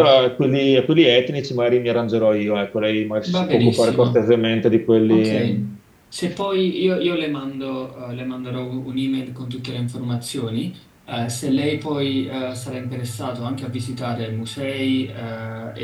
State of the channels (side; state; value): both; identical; correlation 1.00